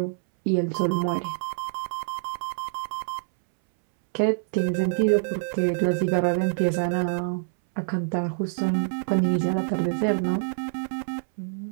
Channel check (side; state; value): left; silent; 61 dB below the other